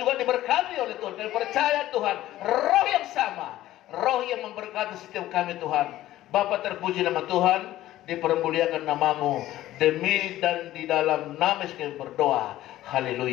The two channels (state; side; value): quieter; right; 14.7 dB